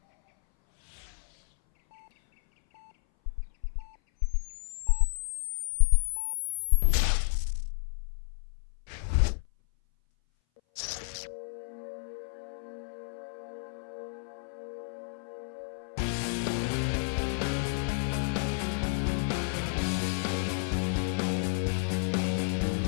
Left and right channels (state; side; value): silent; right; 57 dB below the other